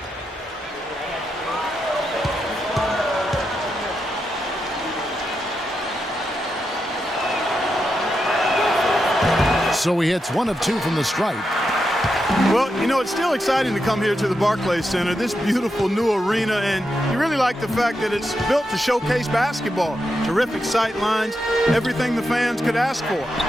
So he hits 1 of 2 from the stripe. Well, you know, it's still exciting to come here to the Barclays Center, this beautiful new arena, and you really like the fact that it's built to showcase basketball. Terrific sight lines, everything the fans could ask for.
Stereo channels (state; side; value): normal; both; correlation 0.86